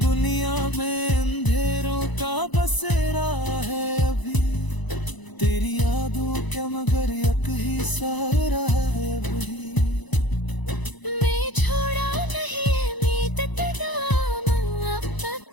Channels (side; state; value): right; late; 1.0 ms